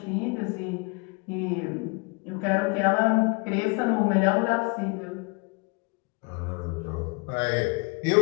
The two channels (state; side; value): quieter; right; 31.1 dB